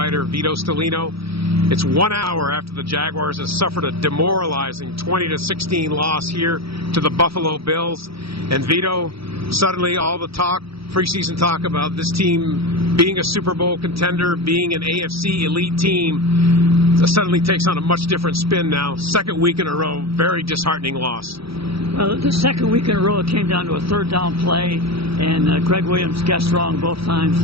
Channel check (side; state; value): left; late; 0.76 ms